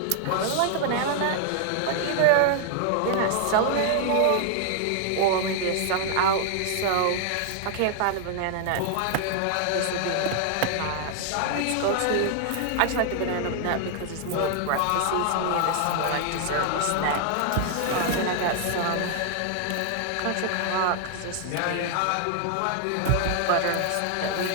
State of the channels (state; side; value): different; both; correlation 0.00